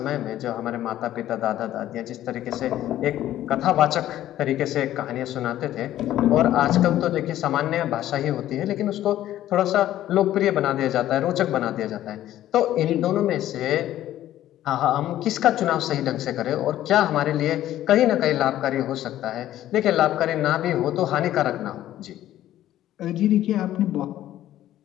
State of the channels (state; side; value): quieter; right; 13.1 dB